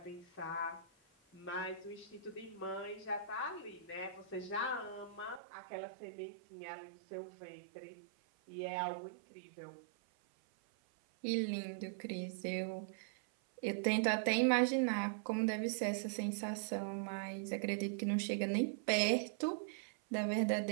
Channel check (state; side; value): drops out; left; at 5.4 s